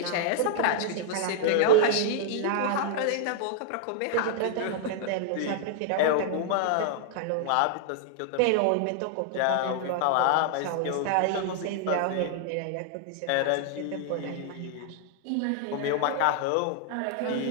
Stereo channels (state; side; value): different; both; correlation -0.01